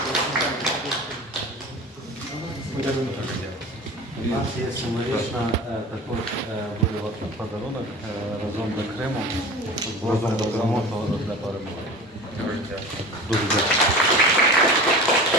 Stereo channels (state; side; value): normal; both; correlation 0.36